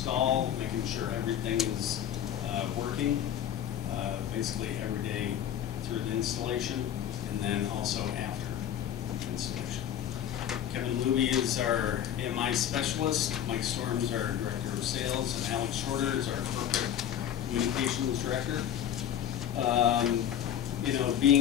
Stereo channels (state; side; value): quieter; right; 10.3 dB